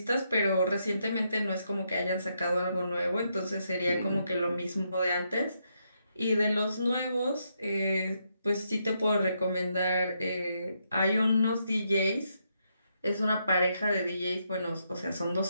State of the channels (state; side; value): inverted; both; correlation -0.79